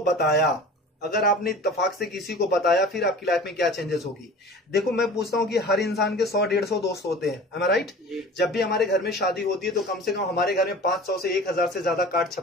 बताया, अगर आपने इत्तेफाक से किसी को बताया, फिर आपकी लाइफ में क्या चेंजेस होगी? देखो, मैं पूछता हूं कि हर इंसान के 100-150 दोस्त होते हैं, am I right? जब भी हमारे घर में शादी होती है तो कम से कम हमारे घर में 500 से 1000 से ज्यादा कार्ड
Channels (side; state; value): both; normal; correlation 0.40